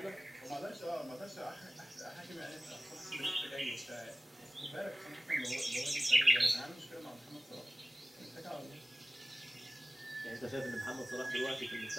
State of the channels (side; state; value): both; normal; correlation 0.96